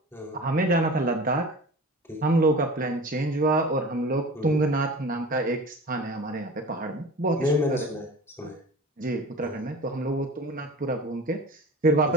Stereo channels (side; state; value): both; normal; correlation 0.37